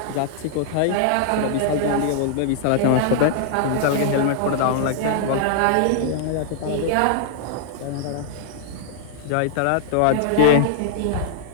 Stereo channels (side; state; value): both; different; correlation -0.01